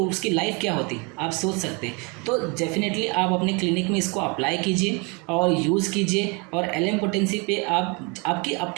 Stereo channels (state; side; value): quieter; left; 30.7 dB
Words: उसकी लाइफ क्या होती आप सोच सकते हैं। तो डेफिनेटली आप अपने क्लिनिक में इसको अप्लाई कीजिए और यूज़ कीजिए। और LM पोटेंसी पे आप